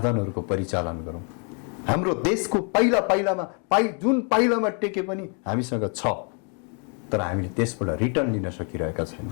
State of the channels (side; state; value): right; quieter; 39.0 dB